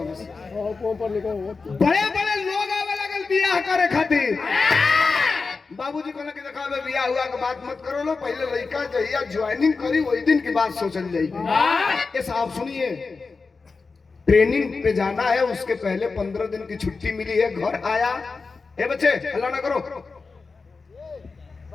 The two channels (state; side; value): quieter; right; 4.4 dB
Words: बस। ऊपर लिखो बड़े बड़े लोग आवे लगल बियाह करे खातिर, बाबूजी कहला कि देखा बे बियाह हुआ के बात मत करो लो, पहले लड़का जहिया ज्वाइनिंग करी वही दिन की बात सोचल जाई। ये साहब सुनिए, ट्रेनिंग पे जाना है, उसके पहले 15 दिन की छुट्टी मिली है, घर आया। ए बच्चे हल्ला ना करो,